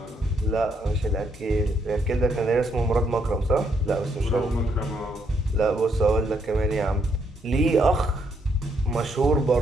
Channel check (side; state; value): both; normal; correlation 0.75